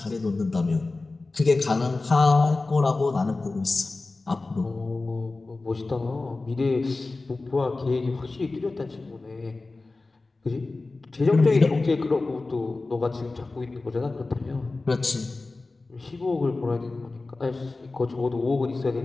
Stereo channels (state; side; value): quieter; right; 3.4 dB